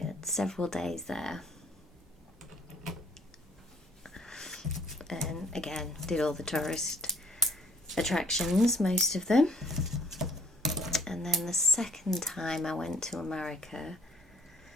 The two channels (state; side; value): normal; both; correlation 0.59